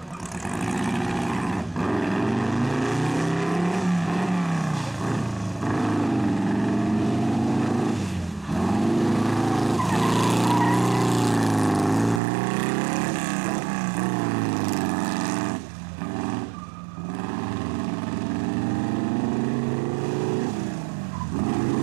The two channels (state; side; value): drops out; left; at 12.2 s